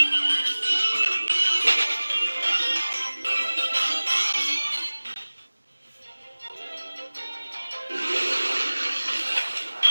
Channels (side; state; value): both; inverted; correlation -1.00